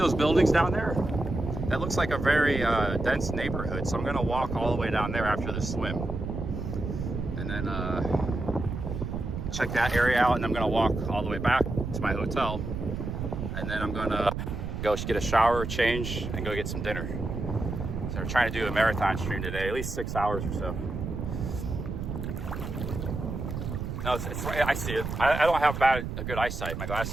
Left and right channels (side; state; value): right; noise; rumble, 5 dB below the sound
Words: buildings down there? That looks like a very dense neighborhood, so I'm gonna walk all the way down there after the swim. And then check that area out, and I'm gonna walk all the way back to my hotel. And then I'm gonna go get a shower, change, and go get some dinner. So we're trying to do a marathon stream today, at least 6 hours or so. No, it's I see it. I don't have a good eyesight. My